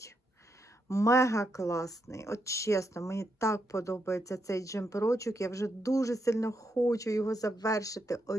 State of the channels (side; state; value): both; normal; correlation 0.81